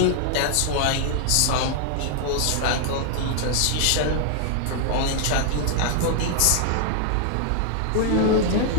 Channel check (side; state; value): both; different; correlation 0.00